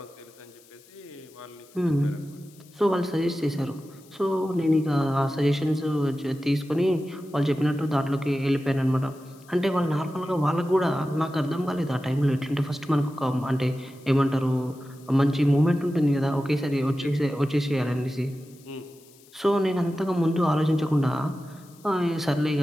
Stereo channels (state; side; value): noise; left; hiss, 27 dB below the sound